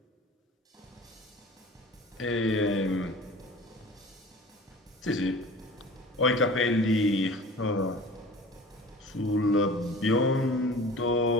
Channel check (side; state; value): both; normal; correlation 0.41